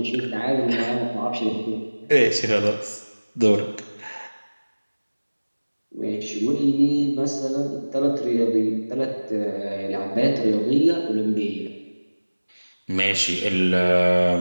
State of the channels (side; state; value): both; inverted; correlation -1.00